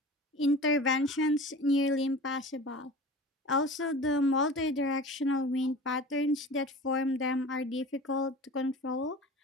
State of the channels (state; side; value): normal; both; correlation 0.38